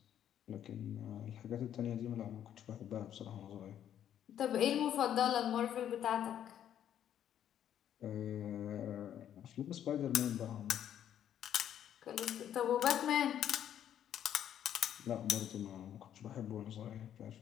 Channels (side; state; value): right; quieter; 10.2 dB